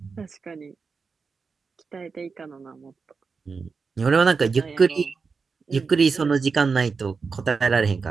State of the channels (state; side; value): quieter; left; 5.0 dB